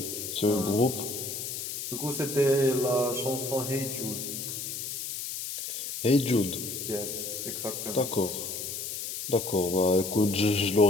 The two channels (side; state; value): left; noise; hiss, 5 dB below the sound